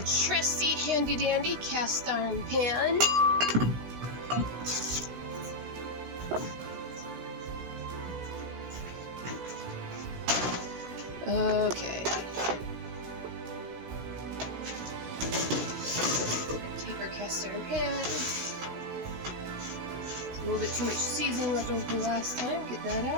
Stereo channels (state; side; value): late; left; 16 ms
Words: handy-dandy cast iron pan. Okay. Take our cast iron pan. A little bit too much seasoning left over from last time. Get that